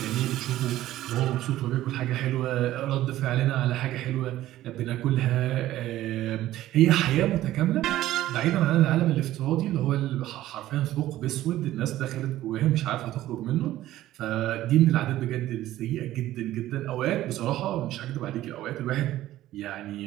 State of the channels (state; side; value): quieter; left; 14.5 dB